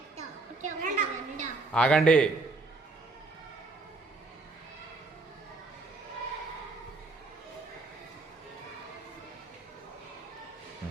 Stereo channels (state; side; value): quieter; left; 3.5 dB